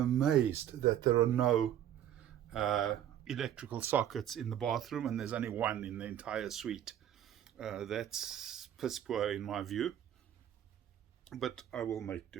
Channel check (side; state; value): left; quieter; 10.7 dB